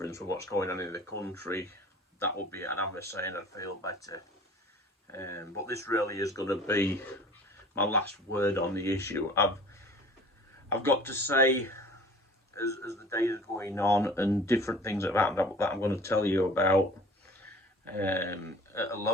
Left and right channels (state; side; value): normal; both; correlation 0.46